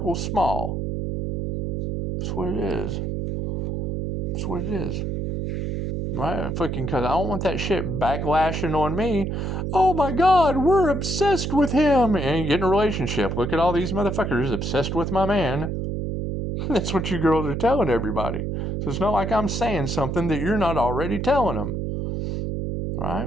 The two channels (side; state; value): right; noise; hum, 2 dB below the sound